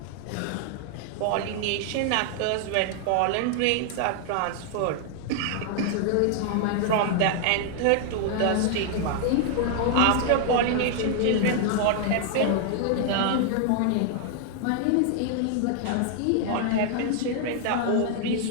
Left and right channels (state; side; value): different; both; correlation 0.00